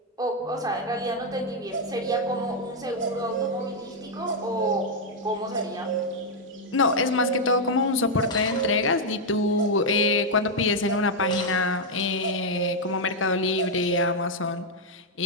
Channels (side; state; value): both; normal; correlation -0.02